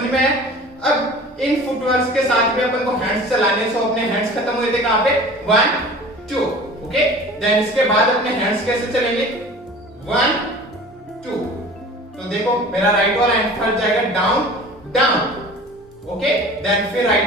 में आया? अब इन फुटवर्क्स के साथ भी अपन को हैंड्स चलाने। सो अपने हैंड्स खत्म हुए थे कहां पे, 1 2, ओके। देन इसके बाद अपने हैंड्स कैसे चलेंगे, 1 2। तो देखो मेरा राइट वाला हैंड फर्स्ट जाएगा डाउन डाउन, ओके। देन फिर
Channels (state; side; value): normal; both; correlation 0.41